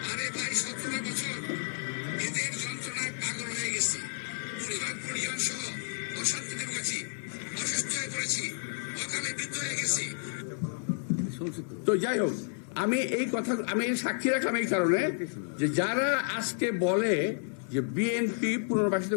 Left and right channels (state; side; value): silent; right; 57 dB below the other